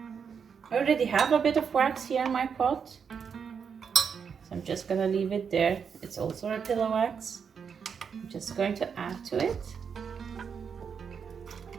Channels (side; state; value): left; quieter; 6.6 dB